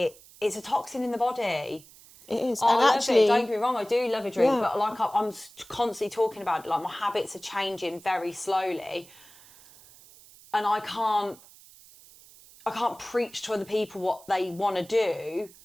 It's a toxin in the body. It is. I And love actually- it. Don't get me wrong, I do love a drink, Yeah. but like I'm constantly talking about it. Like, my habits are changing very slowly, and I can't preach to other people what they want to do.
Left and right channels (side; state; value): right; noise; hiss, 23 dB below the sound